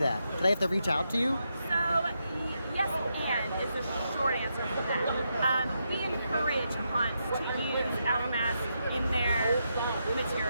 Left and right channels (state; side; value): inverted; both; correlation -0.83